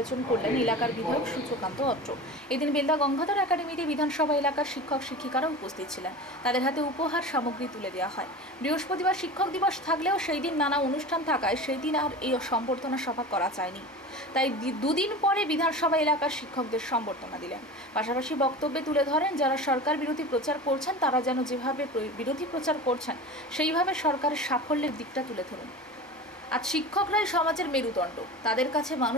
করলেন এলাকার বিধায়ক সূর্যকান্ত অত্র। এদিন বেলদা গঙ্গাধর একাডেমিতে বিধানসভা এলাকার শিক্ষক শিক্ষিকারা উপস্থিত ছিলেন। তাদের হাতে উপহার সামগ্রী তুলে দেওয়া হয়। বৃহস্পতিবার শিক্ষক দিবস থাকলেও সেই দিন নানা অনুষ্ঠান থাকায় সেই দিন আর এই সংবর্ধনা সভা করা যায়নি। তাই দুদিন পরে বিধানসভা এলাকার শিক্ষকদের সংবর্ধনা দিলেন। পাশাপাশি বক্তব্যে তুলে ধরেন, যারা সরকার বিরোধী প্রচার করছেন তারা যেন যেভাবে বিরোধী প্রচার করছেন সেইভাবে সরকারের সাফল্যের দিকটা তুলে ধরুন। আজ শিক্ষকরাই সমাজের মেরুদণ্ড, তাদের কাছে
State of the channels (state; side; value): normal; both; correlation 0.32